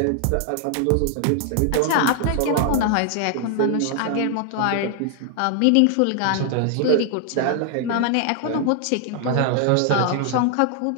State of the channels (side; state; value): both; different; correlation 0.00